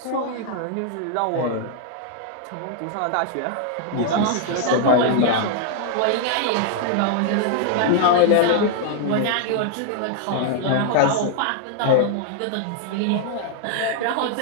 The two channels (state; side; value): different; both; correlation 0.00